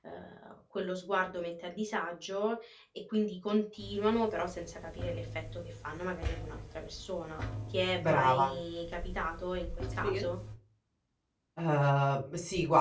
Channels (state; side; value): identical; both; correlation 1.00